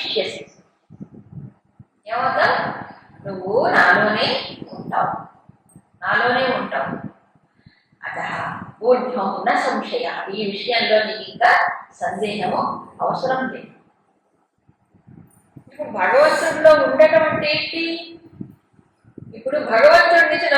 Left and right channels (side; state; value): both; identical; correlation 1.00